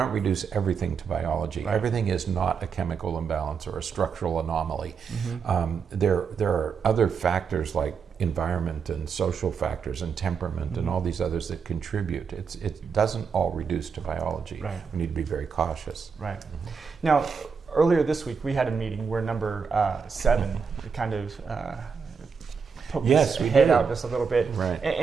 reduce everything to biology. Right. Everything is not a chemical imbalance or a structural anomaly. Mm-hmm. There are other factors like environment and social factors and temperament and all these others that contribute. It doesn't all reduce to biology. Right. We need to be very cautious. Right. Now, earlier this week, we had a meeting where number 7 kind of poked Yes, his we head did. out just a little bit. Right.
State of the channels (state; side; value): quieter; left; 5.9 dB